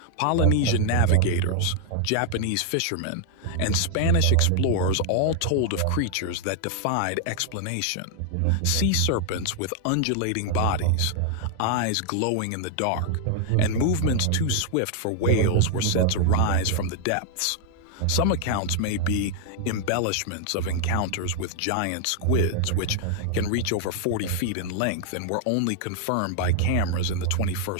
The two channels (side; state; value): both; different; correlation 0.00